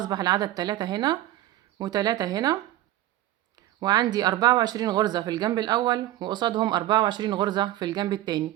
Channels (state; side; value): quieter; left; 14.5 dB